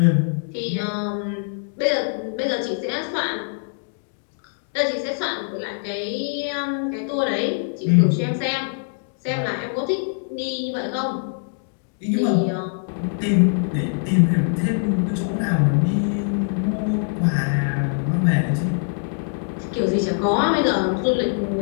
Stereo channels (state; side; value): silent; right; digital silence